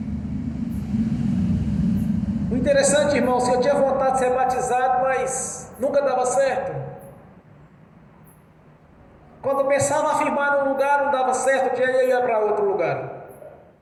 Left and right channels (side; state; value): both; identical; correlation 1.00